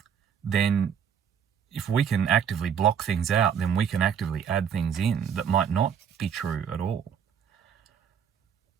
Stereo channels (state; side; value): quieter; left; 7.8 dB